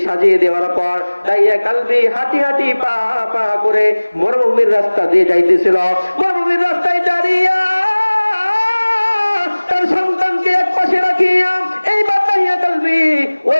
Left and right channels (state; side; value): inverted; both; correlation -1.00